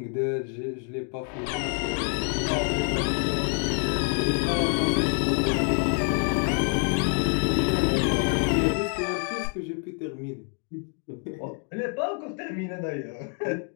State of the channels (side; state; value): right; quieter; 39.4 dB